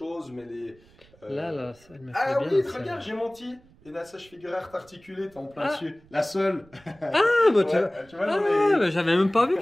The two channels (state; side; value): noise; right; rumble, 28 dB below the sound